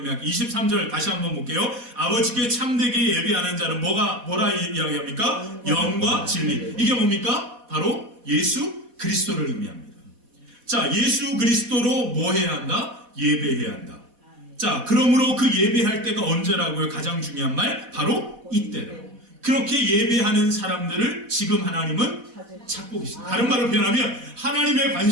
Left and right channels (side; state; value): left; late; 4.1 ms